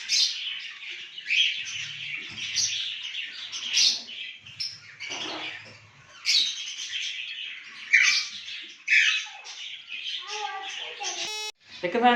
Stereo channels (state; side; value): identical; both; correlation 1.00